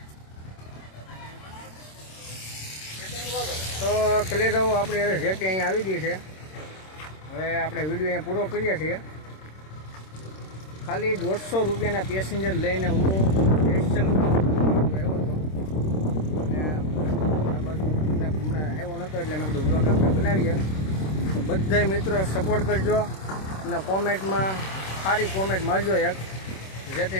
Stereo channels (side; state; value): right; late; 26 ms